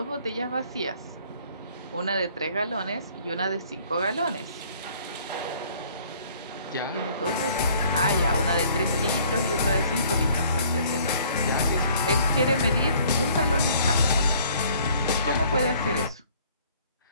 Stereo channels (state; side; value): inverted; both; correlation -0.57